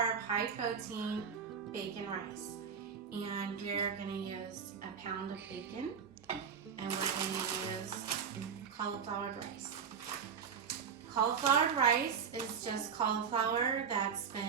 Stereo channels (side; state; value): left; quieter; 6.8 dB